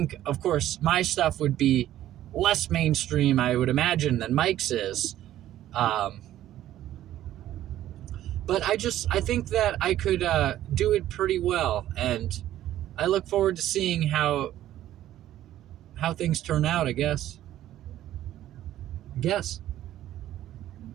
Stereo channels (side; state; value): left; quieter; 13.0 dB